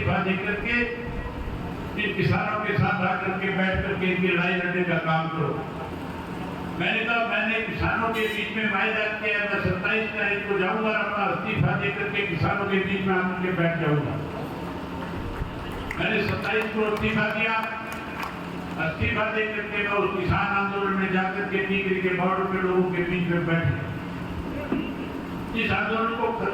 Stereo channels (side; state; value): both; identical; correlation 1.00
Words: देकर के इन किसानों के साथ आकर के बैठ करके इनकी लड़ाई लड़ने का काम करो। मैंने कहा, मैंने किसानों के बीच में वायदा किया, मैं 27 तारीख को जाऊंगा, अपना इस्तीफा देकर के किसानों के बीच में आकर के बैठ जाऊंगा। मैंने 27 को इस्तीफा दिया। इस्तीफा देकर के मैं उस किसान आंदोलन में जाकर के टीकरी के बॉर्डर पे लोगों के बीच में बैठ गया। इस आंदोलन को